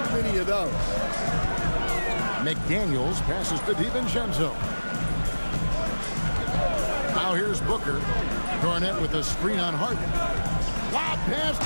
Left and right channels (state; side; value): inverted; both; correlation -1.00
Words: many of those. McDaniels passes to DiVincenzo. Now here's Booker. Garnett with a screen on Harden. Lob pass